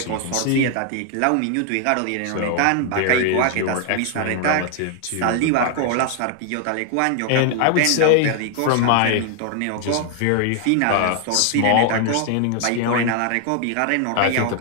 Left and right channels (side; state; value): both; different; correlation 0.00